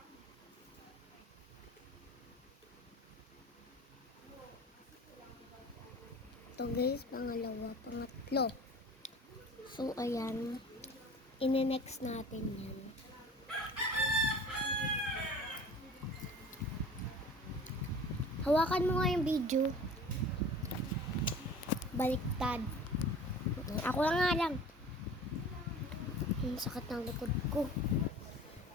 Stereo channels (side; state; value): both; normal; correlation 0.42